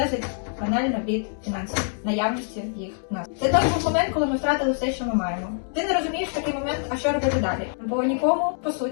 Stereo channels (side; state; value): right; silent; digital silence